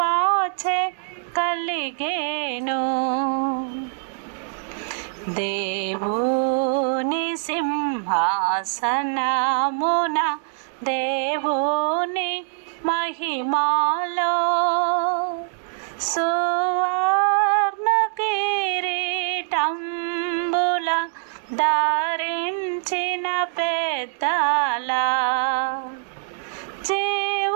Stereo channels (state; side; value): silent; left; digital silence